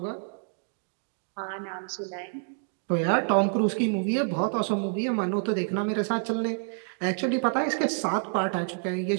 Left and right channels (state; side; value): silent; left; digital silence